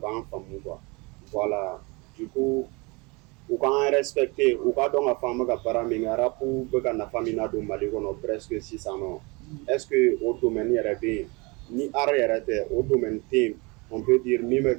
en femme quoi voilà du coup ou quand respecter ou quand donc la femme ga paraminga rapu be ga na famina do mali kono presque 600 ans est-ce que au domaine yarabe ni arrêter au domaine team on peut dire mi me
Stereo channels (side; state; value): left; quieter; 27.5 dB